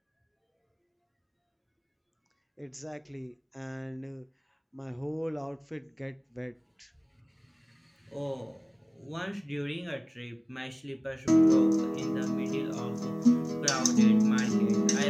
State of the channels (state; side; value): identical; both; correlation 1.00